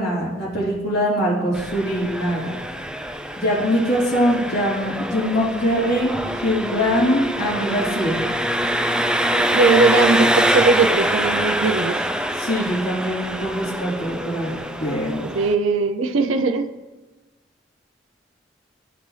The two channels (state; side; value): normal; both; correlation 0.52